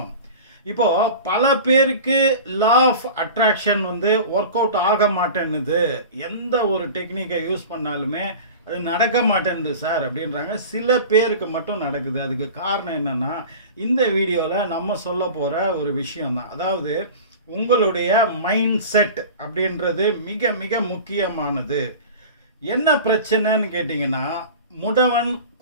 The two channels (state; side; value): inverted; both; correlation -0.36